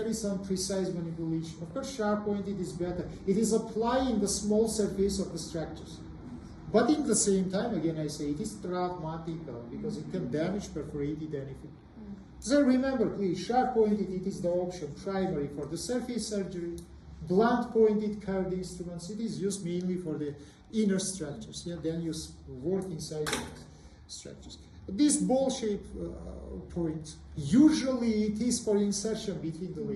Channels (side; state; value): both; identical; correlation 1.00